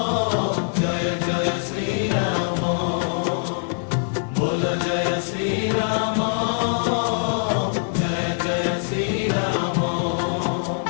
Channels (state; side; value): silent; right; 63 dB below the other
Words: জয় জয় শ্রীরাম, বল জয় শ্রীরাম, জয় জয় শ্রীরাম।